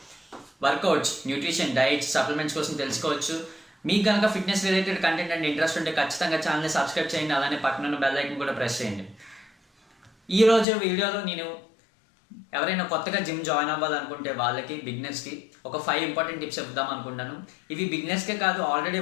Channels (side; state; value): right; drops out; at 10.7 s